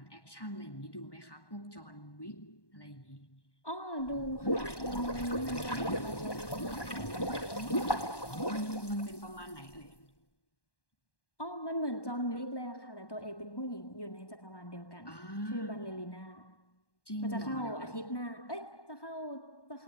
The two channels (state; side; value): late; right; 1.1 ms